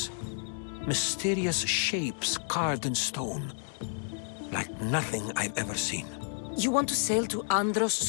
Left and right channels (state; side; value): silent; right; 57 dB below the other